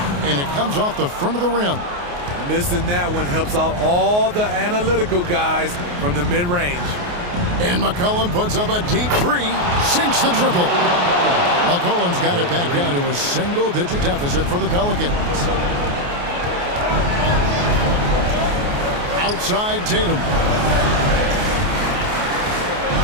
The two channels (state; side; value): late; left; 28 ms